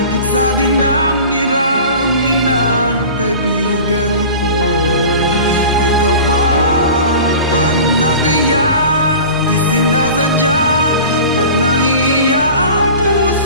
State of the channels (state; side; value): inverted; both; correlation -0.38